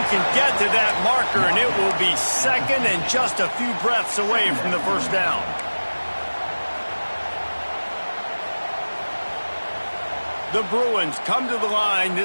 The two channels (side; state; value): both; inverted; correlation -1.00